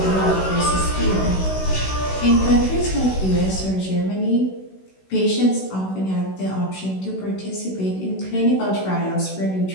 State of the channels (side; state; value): right; late; 16 ms